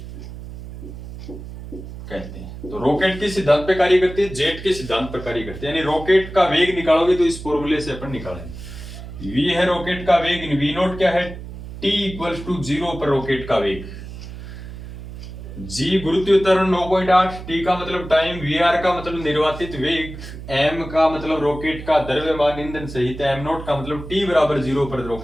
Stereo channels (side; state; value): right; noise; hum, 12 dB below the sound